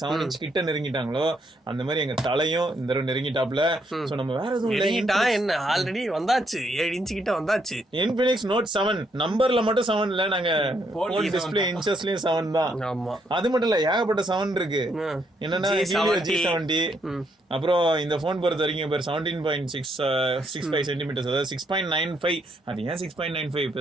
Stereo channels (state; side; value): normal; both; correlation 0.74